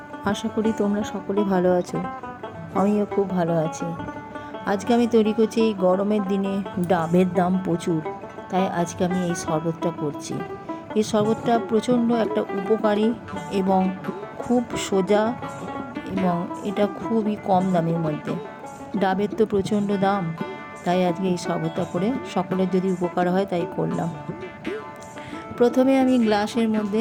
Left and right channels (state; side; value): identical; both; correlation 1.00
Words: আশা করি তোমরা সকলে ভালো আছো। আমিও খুব ভালো আছি। আজকে আমি তৈরি করছি, এই গরমের দিনে ডাবের দাম প্রচুর, তাই আজকে আমি এই শরবতটা করছি। এই শরবতটা প্রচণ্ড একটা উপকারী এবং খুব সোজা, এবং এটা খুবই কম দামের মধ্যে। ডাবের তো প্রচণ্ড দাম, তাই আজকে এই শরবতটা করে সকলের যদি উপকার হয় তাই করলাম। প্রথমে আমি গ্লাসের